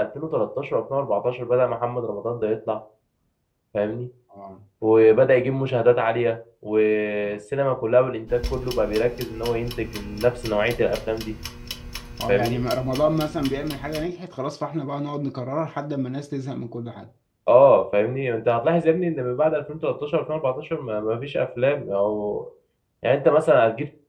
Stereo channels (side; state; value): both; identical; correlation 1.00